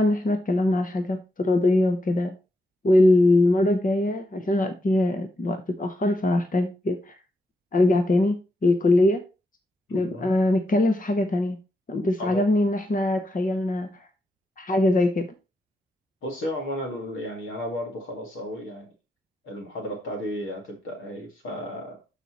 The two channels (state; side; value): normal; both; correlation 0.84